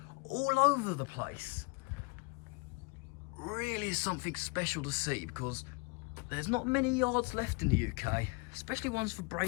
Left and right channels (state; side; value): quieter; right; 29.3 dB